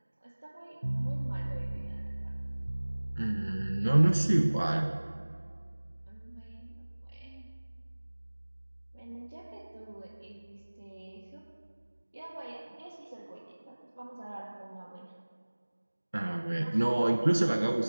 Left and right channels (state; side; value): inverted; both; correlation -1.00